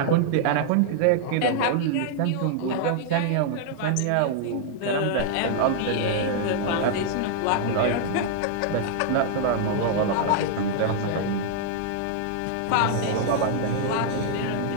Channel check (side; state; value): both; different; correlation -0.01